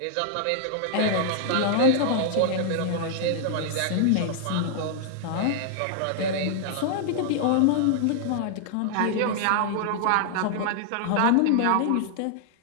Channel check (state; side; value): different; both; correlation -0.01